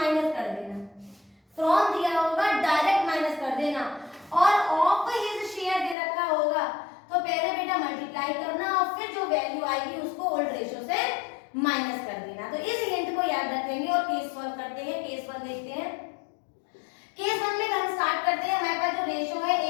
कर देना। फ्रॉम दिया होगा डायरेक्ट माइनस कर देना, और ऑफ हिज शेयर दे रखा होगा तो पहले बेटा मल्टीप्लाई करना और फिर जो वैल्यू आएगी उसको ओल्ड रेशो से माइनस कर देना। तो इस हिंट को याद रखेंगे और केस सॉल्व करते हैं। केस 1 देखते हैं। केस 1 में हम स्टार्ट करते हैं। हमारे पास जो रेशो है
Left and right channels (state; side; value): drops out; right; at 6.0 s